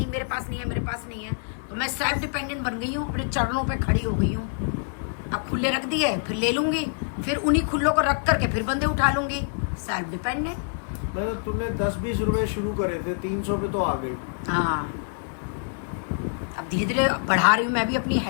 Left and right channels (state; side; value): silent; right; digital silence